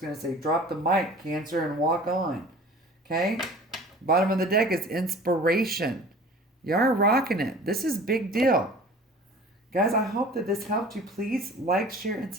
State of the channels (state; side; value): normal; both; correlation 0.44